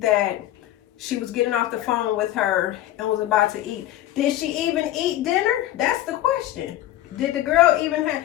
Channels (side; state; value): right; quieter; 14.0 dB